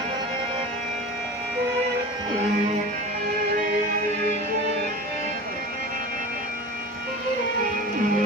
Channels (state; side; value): normal; both; correlation 0.33